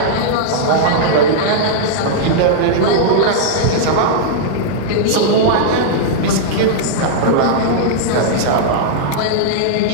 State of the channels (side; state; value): both; different; correlation -0.02